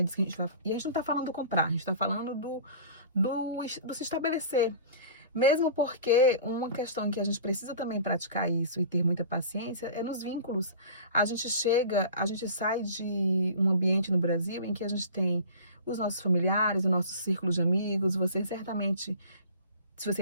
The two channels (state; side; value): inverted; both; correlation -0.40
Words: disso que a gente vai. E a gente não tá falando do comprar, a gente tá falando do se estabelecer. Mesmo porque uma questão em que a gente precisa também praticar isso e ter muita paciência é nos vínculos. A gente sai de um ambiente no Brasil em que a gente tem os nossos familiares, o nosso círculo de amigos. Você certamente, se você